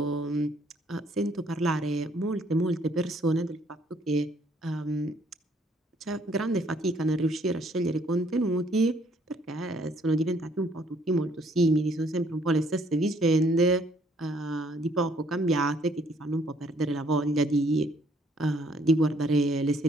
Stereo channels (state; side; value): normal; both; correlation 0.65